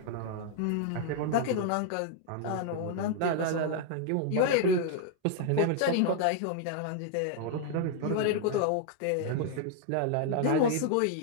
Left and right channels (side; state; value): both; different; correlation 0.00